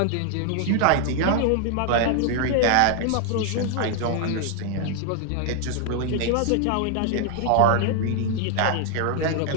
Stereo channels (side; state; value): both; different; correlation 0.00